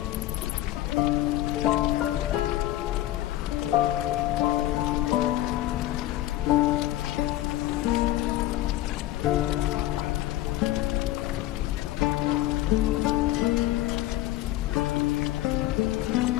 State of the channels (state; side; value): quieter; right; 15.0 dB